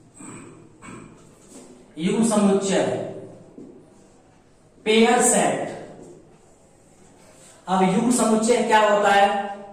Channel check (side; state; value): both; identical; correlation 1.00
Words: पेयर सेट। अब युग्म समुच्चय क्या होता है,